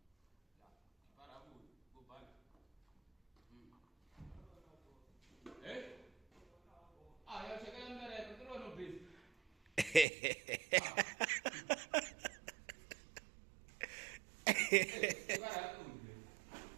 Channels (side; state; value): left; drops out; at 10.1 s